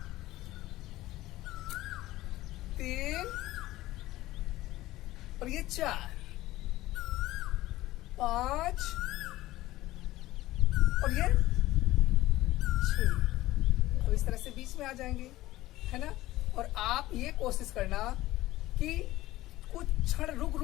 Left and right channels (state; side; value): quieter; right; 16.7 dB